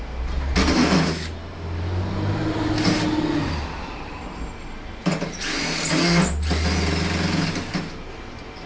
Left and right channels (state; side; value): identical; both; correlation 1.00